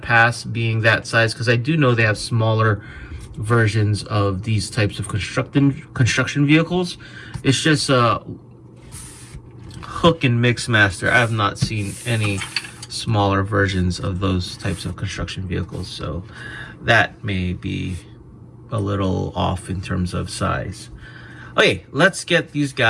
pass being that size, because I do know they have smaller versions of these types of construction vehicles. It's just Hook and Mixmaster. I have not seen any smaller versions of those types of construction vehicles, so that may be a little off in terms of size. Okay, let's get these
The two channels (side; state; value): both; identical; correlation 1.00